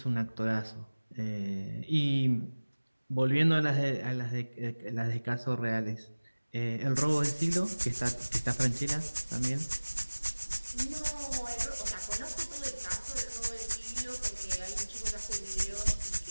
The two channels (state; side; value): inverted; both; correlation -1.00